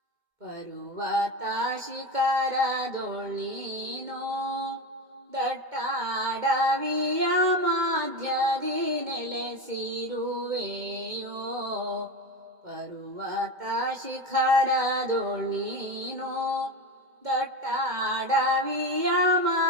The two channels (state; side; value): late; left; 2.1 ms